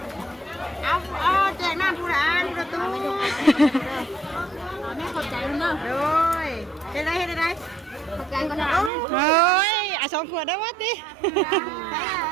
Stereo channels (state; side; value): drops out; left; at 8.9 s